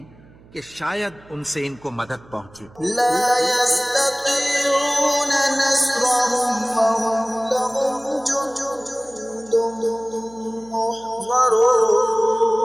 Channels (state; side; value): noise; right; hum, 25 dB below the sound